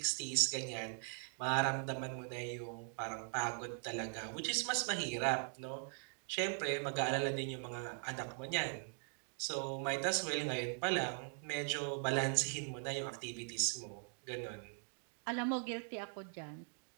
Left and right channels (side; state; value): left; silent; 51 dB below the other